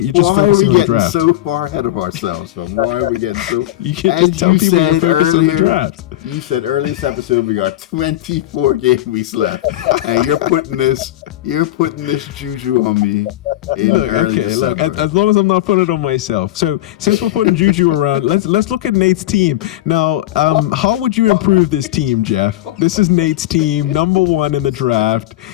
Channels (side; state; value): right; quieter; 15.1 dB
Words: just focusing on the draft. Why are we getting so far ahead of ourselves? Why are we getting so? You can just tell people to focus on the draft. You said earlier in this episode we got 24 game weeks left, and you're putting this juju on me. Look. As long as I'm not putting it on myself. So since we're putting juju around, let's look at Nate's team now. How would you improve this team, Jeff? This is Nate's team, number one in the draft.